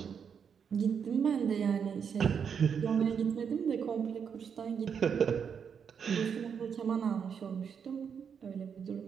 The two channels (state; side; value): quieter; left; 7.0 dB